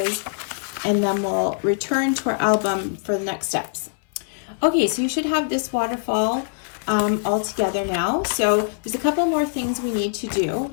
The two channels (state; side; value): silent; right; 60 dB below the other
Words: and then we'll return to our album for the next steps. Okay, so you should have this waterfall all together now. So there's a couple more things we need to do.